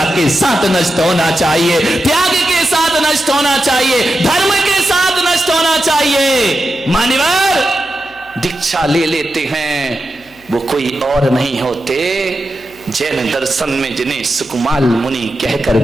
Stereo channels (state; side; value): noise; left; hum, 29 dB below the sound